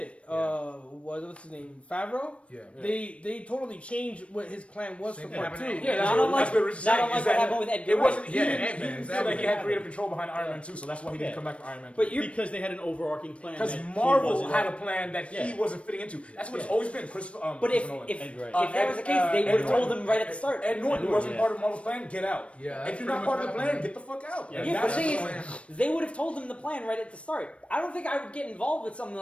What's his name? Favreau. Yeah. They totally changed what his plan was Same for thing part happened 2. to Yeah, Not unlike- that's what Rich is not saying. unlike is what that happened with Edgar It wasn't. Wright. He Yeah, didn't Ant-Man, feel like he exactly. had creative control behind Iron Man 2, so that's why he didn't Yeah. come back for Iron Man 2. But you're Because they had an overarching plan. Because that he Marvel wasn't- had a plan that he Yeah. wasn't fitting into. That's what it's Yeah. always been. But Christopher if Nolan. if, Ed Wright. if that was the case, they Ed would have told Norton. him right at the start. Ed Norton Ed wasn't Norton, part of Marvel's plan. Get out. Yeah, that's If you're not pretty part of much the what plan, happened. get the fuck out. Yeah. Yeah, but the thing That's is, they would have told him the plan right at the start. I don't think I would get involved with something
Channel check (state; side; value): late; right; 0.061 ms